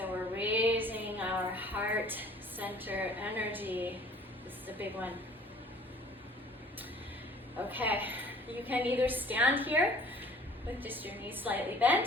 we're raising our heart center energy. This is a big one. Okay, you can either stand here with just your knees slightly bent,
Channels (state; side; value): normal; both; correlation 0.51